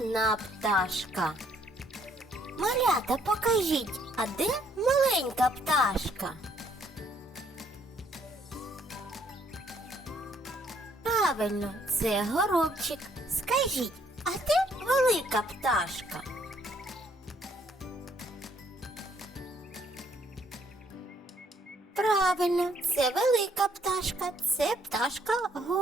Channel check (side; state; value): both; normal; correlation 0.67